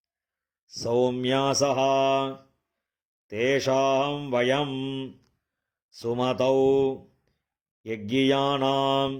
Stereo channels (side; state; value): both; identical; correlation 1.00